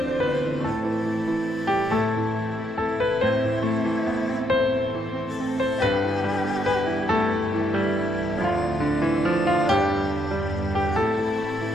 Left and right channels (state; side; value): normal; both; correlation 0.76